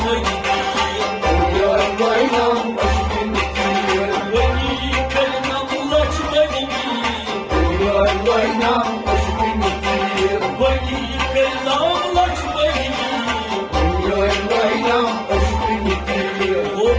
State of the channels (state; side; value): identical; both; correlation 1.00